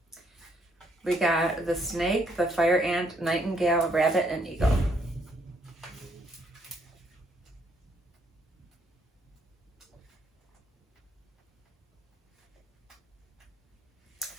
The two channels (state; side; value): normal; both; correlation 0.71